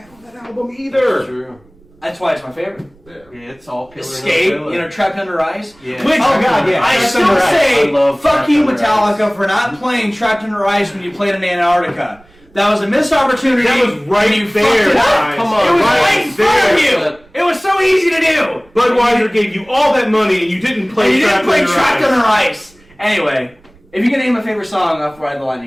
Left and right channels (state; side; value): noise; right; rumble, 30 dB below the sound